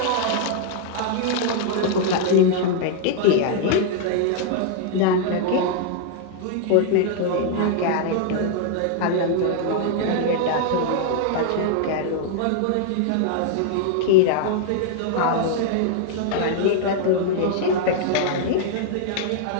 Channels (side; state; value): both; different; correlation 0.00